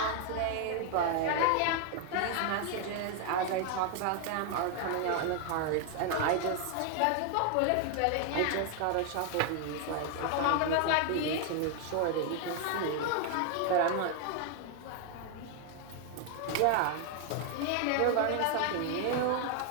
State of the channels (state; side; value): different; both; correlation 0.01